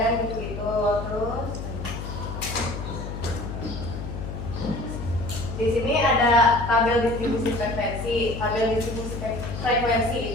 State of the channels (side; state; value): left; noise; hum, 7 dB below the sound